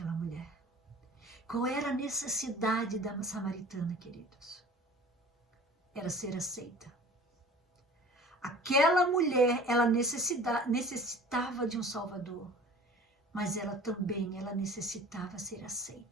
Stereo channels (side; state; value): both; normal; correlation 0.44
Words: mulher. Qual era a necessidade da samaritana, queridos? Era ser aceita. Aquela mulher, ela necessitava de um Salvador, mas ela necessitava ser